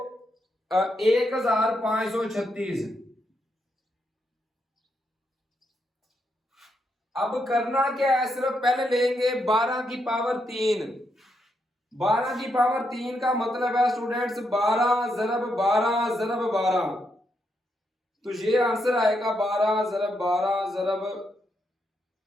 अब करना क्या है, सिर्फ पहले लेंगे 12 की पावर 3। 12 की पावर 3 का मतलब है स्टूडेंट्स 12 ज़रब 12 ज़रब 12, तो ये आंसर आएगा 12 ज़रब 12 ज़रब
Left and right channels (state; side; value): normal; both; correlation 0.80